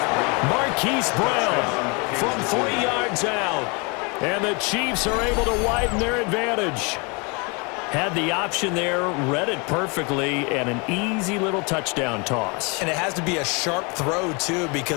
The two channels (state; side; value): quieter; right; 30.8 dB